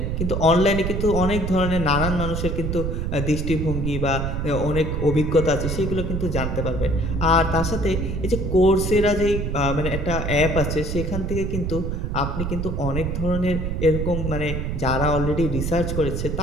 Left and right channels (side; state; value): right; noise; rumble, 2 dB below the sound